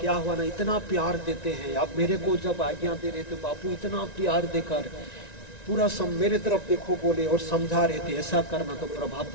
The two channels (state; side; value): late; right; 1.9 ms